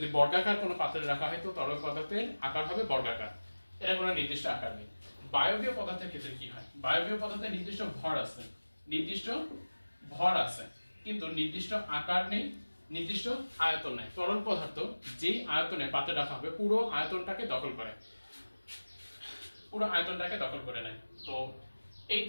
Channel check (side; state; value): both; inverted; correlation -1.00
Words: বর্গাকার কোনো পাত্রে রাখা হয় তো তরল পদার্থের আকার হবে বর্গাকার। এর কোনো নির্দিষ্ট আকার নেই। বায়বীয় পদার্থের ক্ষেত্রে কি হয়, বায়বীয় পদার্থে নির্দিষ্ট ভর আছে, নির্দিষ্ট ভর আছে কিন্তু নির্দিষ্ট আকার নেই, নির্দিষ্ট আয়তন নেই। তরল পদার্থ যেই আয়তনে পাত্রে রাখা হবে পুরো আয়তনটাকে দখল করে, পুরো আয়তনটাকে দখল করে নেয়। তো এই